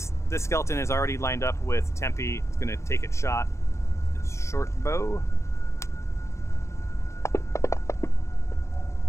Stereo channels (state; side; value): late; right; 0.14 ms